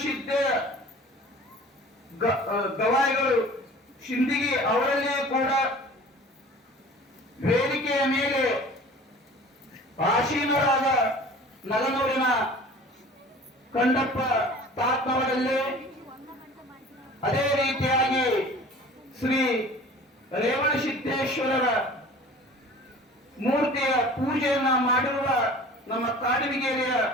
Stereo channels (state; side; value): normal; both; correlation 0.44